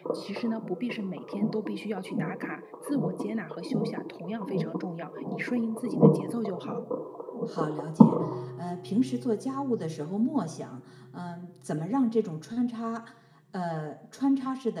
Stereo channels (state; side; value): identical; both; correlation 1.00